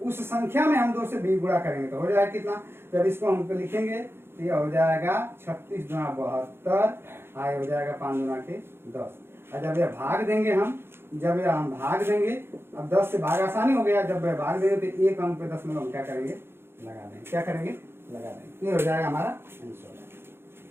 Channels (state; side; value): late; left; 0.11 ms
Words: उस संख्या में हम 2 से भी गुणा करेंगे तो हो जाएगा कितना। जब इसको हम लिखेंगे तो यह हो जाएगा 36 गुणा 72, आए हो जाएगा 5 गुणा के 10। और जब यह भाग देंगे हम भाग देंगे, अब 10 से भाग आसानी हो गया, जब भाग देंगे तो एक अंक पे 10 में हम क्या करेंगे, लगा देंगे। ये हो जाएगा हमारा आंसर।